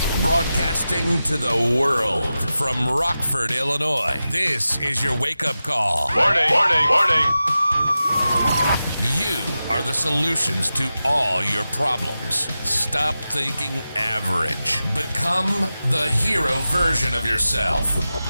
Broadcasting to the world from Rockford, Illinois. This is your wake-up call. Warning. You are the solutions to all your problems. Stop thinking average. Become the hero version of yourself.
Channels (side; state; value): both; inverted; correlation -0.93